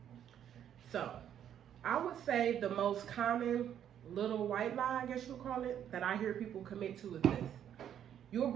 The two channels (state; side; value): quieter; left; 9.8 dB